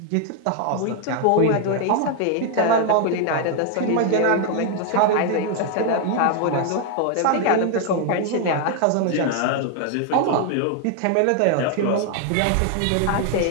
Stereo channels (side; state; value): both; different; correlation 0.00